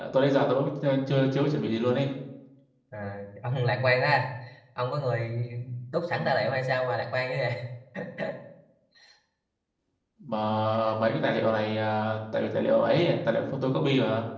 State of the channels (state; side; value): identical; both; correlation 1.00